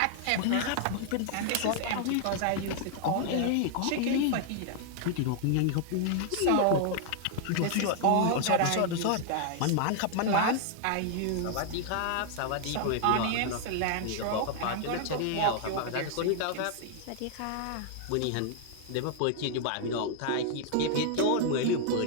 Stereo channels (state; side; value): different; both; correlation 0.00